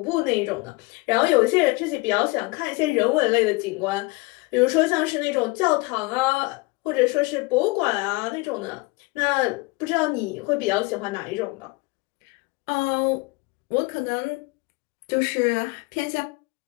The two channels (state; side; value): quieter; right; 25.3 dB